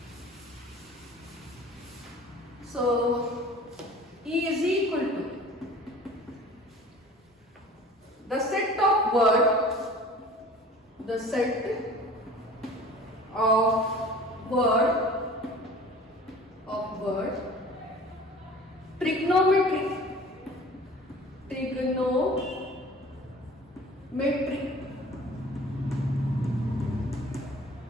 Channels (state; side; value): normal; both; correlation 0.44